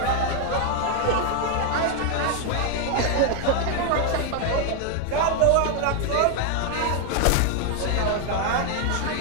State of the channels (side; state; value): both; different; correlation 0.01